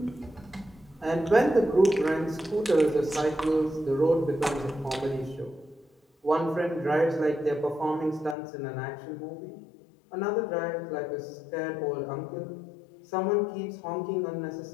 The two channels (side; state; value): right; drops out; at 8.3 s